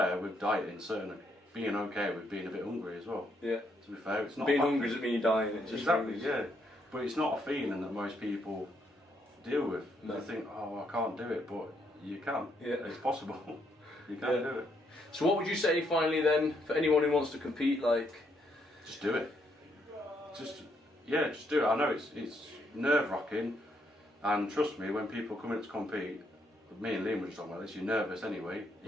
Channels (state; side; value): normal; both; correlation 0.74